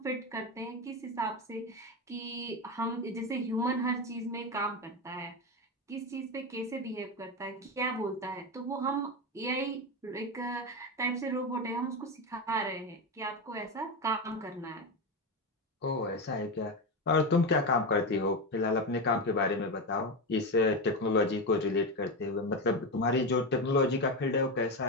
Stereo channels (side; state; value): both; normal; correlation 0.15